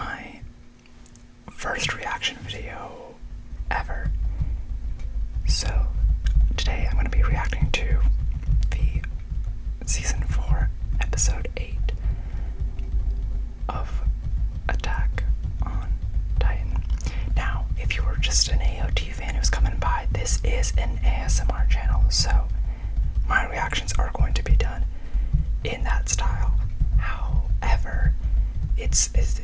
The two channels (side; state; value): both; identical; correlation 1.00